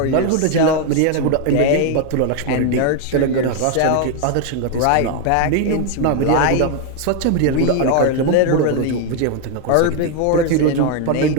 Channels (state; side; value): different; both; correlation 0.01